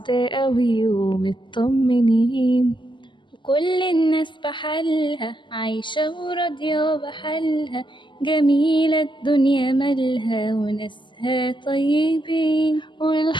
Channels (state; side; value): late; right; 0.23 ms